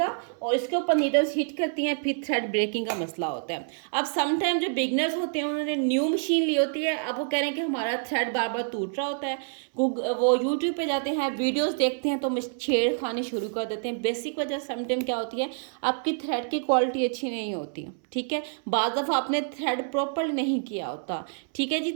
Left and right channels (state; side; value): silent; left; 60 dB below the other